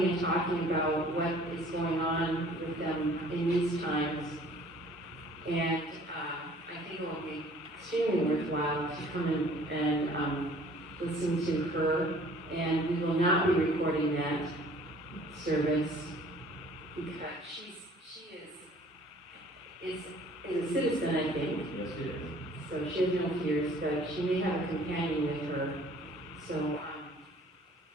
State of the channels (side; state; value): both; normal; correlation 0.53